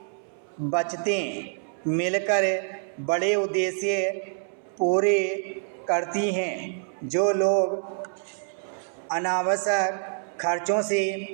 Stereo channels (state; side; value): silent; left; 60 dB below the other